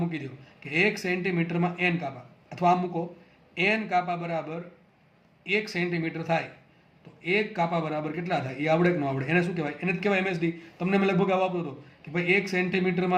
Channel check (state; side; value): identical; both; correlation 1.00